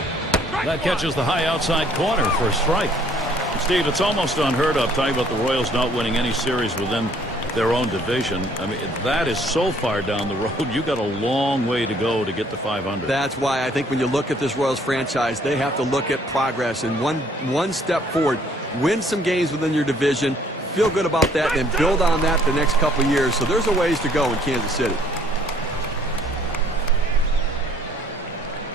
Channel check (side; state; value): both; normal; correlation 0.61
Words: That catches the high outside corner for a strike. Steve, it's almost unheard of talking about the Royals not winning any series within their own division. I mean, that is so far down the road. You got a long way to go to get to 500. That's why I think when you look at this Royals franchise, they have to look at progress and one step forward. Win some games within your division, feel good about that, and build on that the next couple of years. So there's a ways to go in Kansas City.